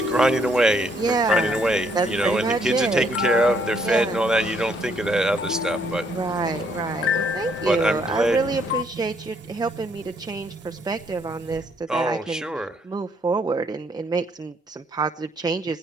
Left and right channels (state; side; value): normal; both; correlation 0.69